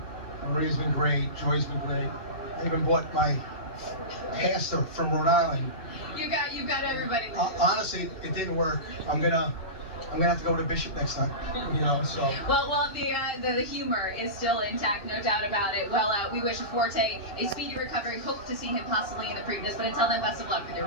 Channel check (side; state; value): right; late; 2.7 ms